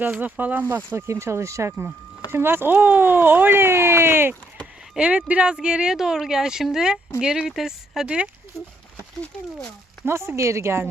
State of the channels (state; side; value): normal; both; correlation 0.73